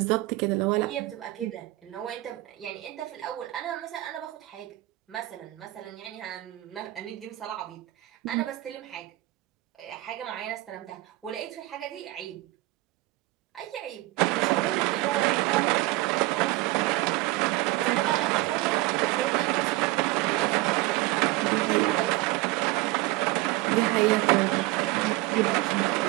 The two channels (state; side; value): quieter; left; 18.9 dB